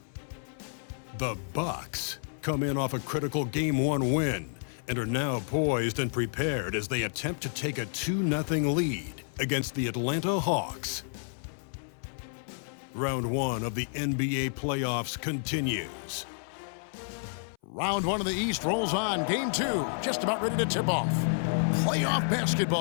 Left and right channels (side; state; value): right; silent; 58 dB below the other